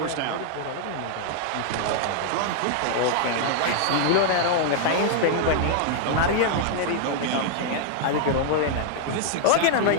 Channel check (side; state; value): both; different; correlation 0.00